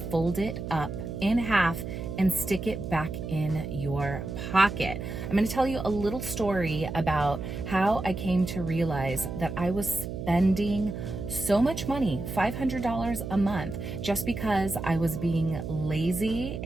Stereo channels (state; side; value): noise; right; hum, 6 dB below the sound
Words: it up in half and stick it back in your pocket. I'm gonna tell you a little story about how I came to realize that I was spending so much money, $500 a month, just because I was being lazy